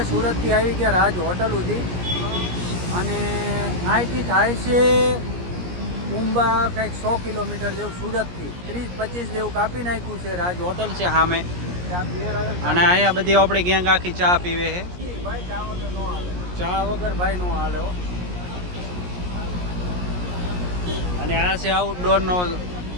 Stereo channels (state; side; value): late; left; 17 ms